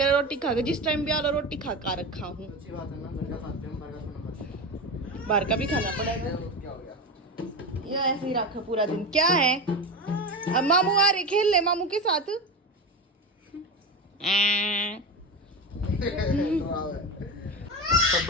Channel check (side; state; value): both; normal; correlation 0.21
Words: रोटी खा के? जिस टाइम भी आ रहा रोटी खा कर रखा हूँ। अच्छी बात है ना, घर का खाते हैं, बाहर का खाना बाहर का भी खाना पड़ेगा, क्या हो गया? ये ऐसे ही रखा पूरा दिन। क्या है अब मामू आ रहे, खेल ले मामू के साथ। सब